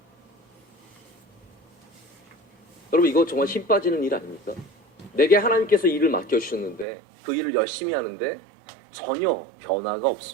여러분, 이거 정말 힘 빠지는 일 아닙니까? 내게 하나님께서 일을 맡겨주셨는데 그 일을 열심히 하는데 전혀 변화가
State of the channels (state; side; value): drops out; left; at 6.9 s